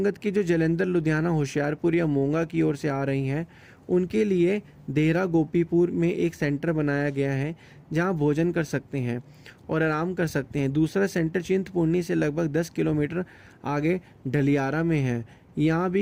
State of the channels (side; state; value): both; identical; correlation 1.00